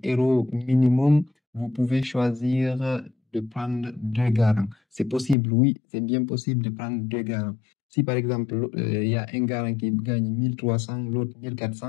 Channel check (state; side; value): drops out; right; at 5.4 s